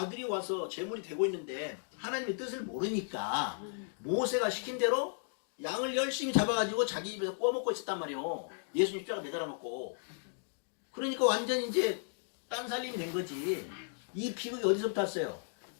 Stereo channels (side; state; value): right; silent; digital silence